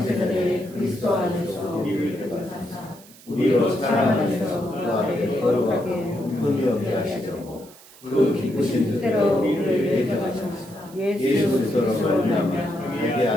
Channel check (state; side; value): noise; right; hiss, 22 dB below the sound